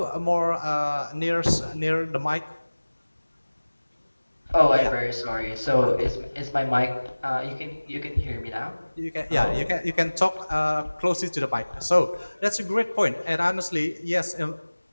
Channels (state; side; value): inverted; both; correlation -1.00